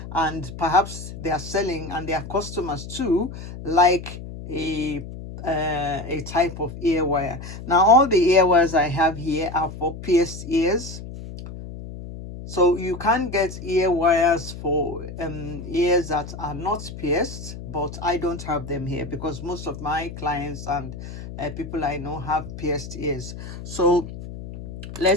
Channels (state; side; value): noise; left; hum, 11 dB below the sound